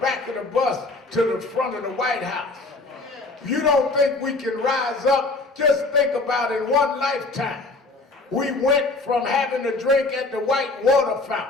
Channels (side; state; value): right; quieter; 3.3 dB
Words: of the bus to the front of the White House. You don't think we can rise up? Just think about in one lifetime. We went from having a drink at the White Water